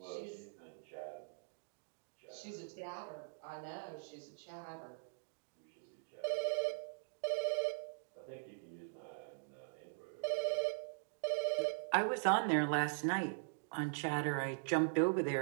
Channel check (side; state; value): left; silent; digital silence